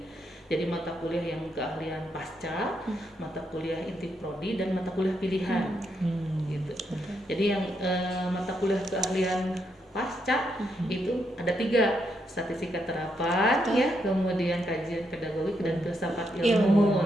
Jadi mata kuliah yang keahlian pasca, mata kuliah inti prodi, dan mata kuliah pilihan. Gitu. Jadi yang mata kuliah keahlian pasca itu ada 3, statistika terapan ya, kemudian kajian pedagogik dan filsafat ilmu.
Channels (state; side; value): normal; both; correlation 0.79